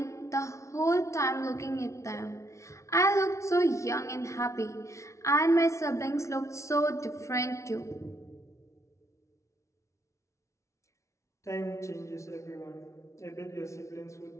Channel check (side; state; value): right; late; 0.14 ms